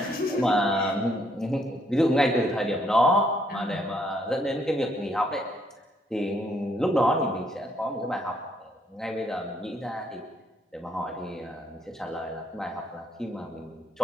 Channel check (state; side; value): normal; both; correlation 0.70